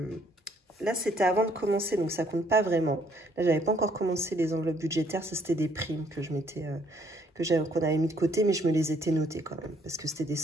Là, c'était avant de commencer, donc ça compte pas vraiment. Là, j'avais pas encore commencé les enveloppes budgétaires. Ça, c'était des primes que qu'on avait mis de côté, mais je me les étais notées quand même, parce que c'était des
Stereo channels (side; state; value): both; normal; correlation 0.66